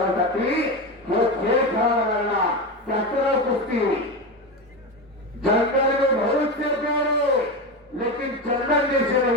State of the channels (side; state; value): both; normal; correlation 0.19